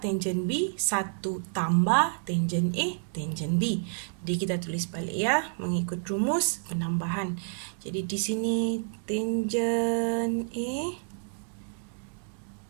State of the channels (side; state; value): left; silent; digital silence